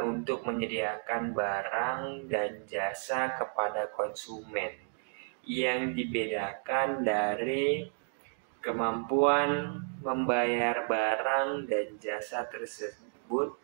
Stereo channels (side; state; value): left; silent; 56 dB below the other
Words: untuk menyediakan barang dan jasa kepada konsumen, yang dibedakan dari kemampuan membayar barang dan jasa tersebut